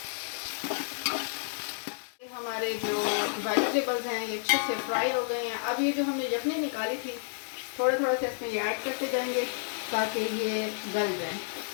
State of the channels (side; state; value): right; silent; digital silence